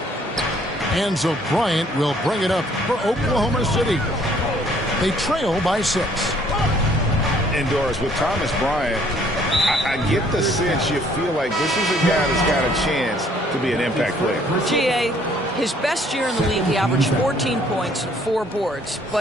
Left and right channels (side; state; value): both; normal; correlation 0.61